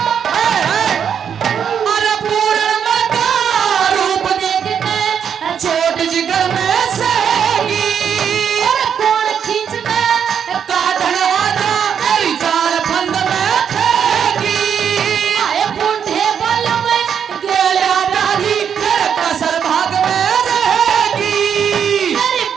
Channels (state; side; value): quieter; left; 7.9 dB